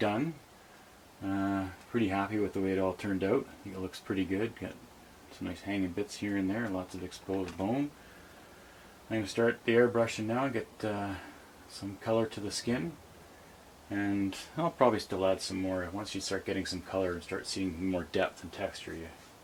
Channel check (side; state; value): both; identical; correlation 1.00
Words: Pretty happy with the way it all turned out. I think it looks pretty good. Got some nice hanging bits here and there, lots of exposed bone. I'm going to start the airbrushing now, get some color to the skin, and I'll probably still add some more. Once you start getting some color and start seeing more depth and texture, you